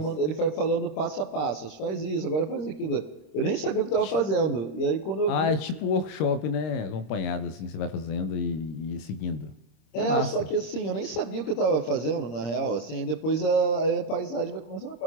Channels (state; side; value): late; right; 26 ms